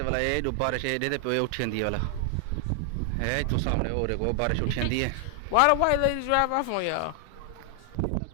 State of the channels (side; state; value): both; different; correlation 0.00